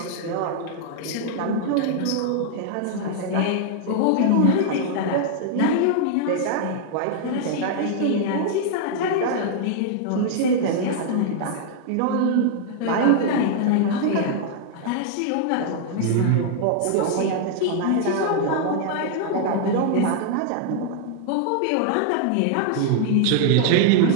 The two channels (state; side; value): different; both; correlation 0.00